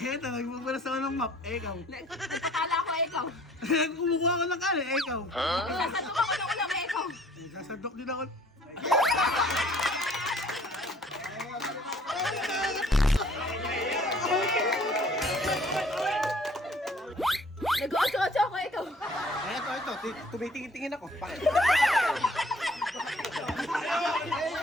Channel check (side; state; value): both; normal; correlation 0.56